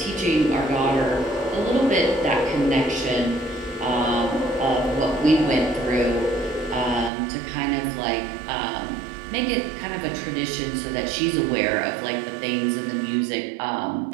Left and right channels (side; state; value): left; drops out; at 7.1 s